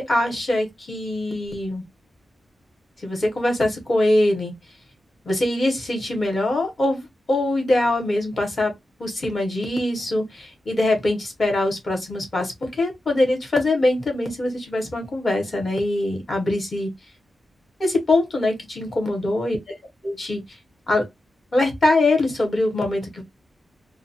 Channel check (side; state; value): both; normal; correlation 0.91